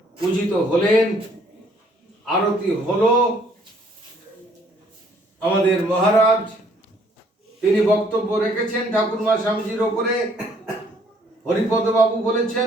পূজিত হলেন, আরতি হলো। আমাদের মহারাজ তিনি বক্তব্য রেখেছেন ঠাকুরমা স্বামীজির ওপরে, হরিপদ বাবু বলেছেন,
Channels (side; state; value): both; normal; correlation 0.63